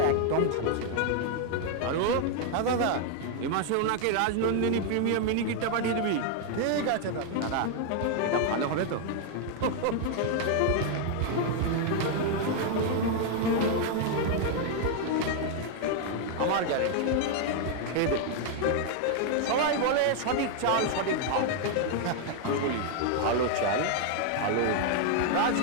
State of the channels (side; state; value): both; different; correlation 0.00